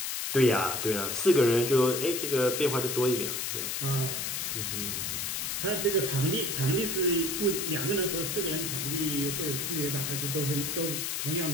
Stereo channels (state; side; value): noise; left; hiss, 2 dB below the sound